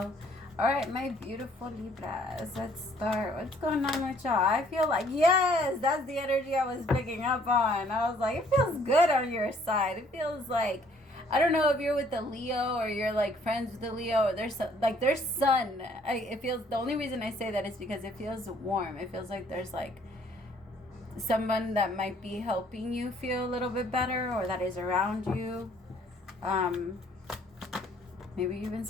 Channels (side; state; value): both; normal; correlation 0.61